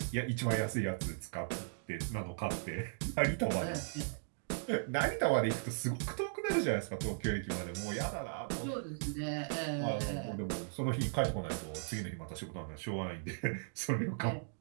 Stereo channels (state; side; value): silent; left; digital silence